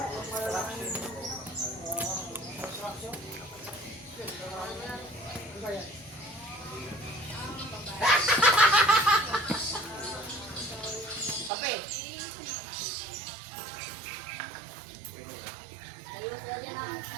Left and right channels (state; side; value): drops out; left; at 11.5 s